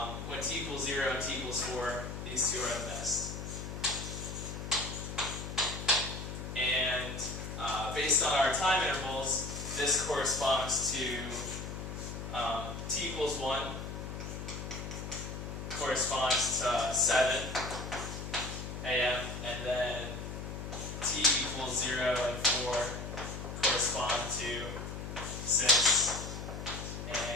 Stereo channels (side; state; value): left; noise; hum, 7 dB below the sound